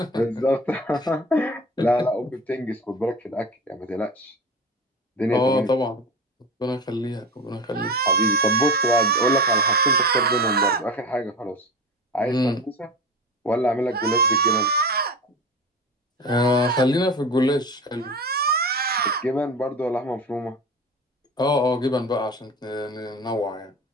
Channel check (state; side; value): normal; both; correlation 0.30